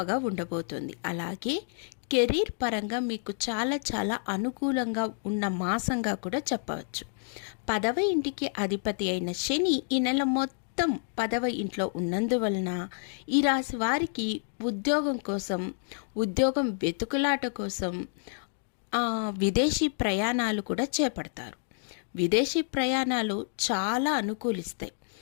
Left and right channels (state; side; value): silent; right; digital silence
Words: ఉండబోతుంది. అలాగే కెరీర్ పరంగా మీకు చాలా అనుకూలంగా ఉన్న మాసంగా కూడా చెప్పవచ్చు. 10వ ఇంటికి అధిపతి అయిన శని ఈ నెల మొత్తం 10వ ఇంట్లో ఉన్నందువలన ఈ రాశి వారికి ఉద్యోగం వెతుకులాట కోసం విదేశీ ప్రయాణాలు కూడా చేపడతారు. విదేశీ ప్రయాణాలు చాలా అనుకూలిస్తాయి.